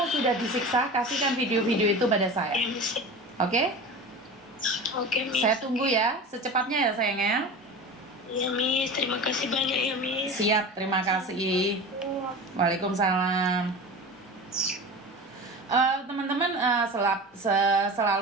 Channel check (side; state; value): both; normal; correlation 0.32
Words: sudah disiksa. Kasihkan video-video itu pada saya. Iya, Miss. Oke? Oke, Miss. Saya tunggu ya, secepatnya ya sayangnya. Iya, Miss. Terima kasih banyak ya, Miss. Siap, terima kasih. Waalaikumsalam. Teman-teman,